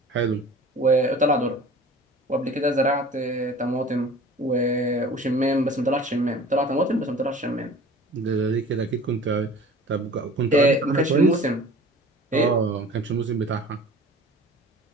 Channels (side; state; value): both; normal; correlation 0.43